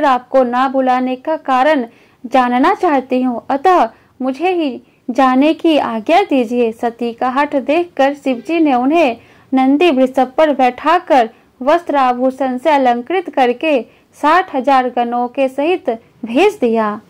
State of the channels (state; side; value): identical; both; correlation 1.00